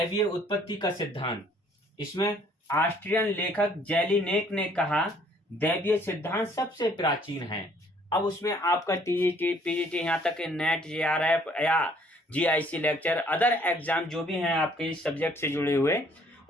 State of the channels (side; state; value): both; normal; correlation 0.61